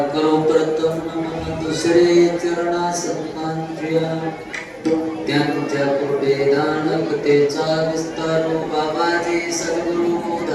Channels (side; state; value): both; identical; correlation 1.00